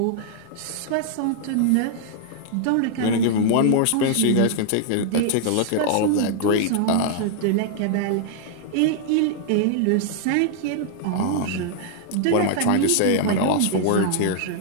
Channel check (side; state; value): both; different; correlation -0.01